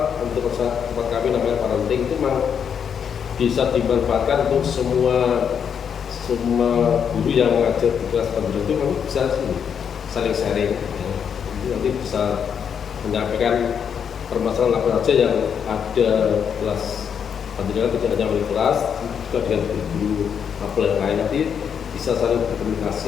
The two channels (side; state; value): right; quieter; 7.6 dB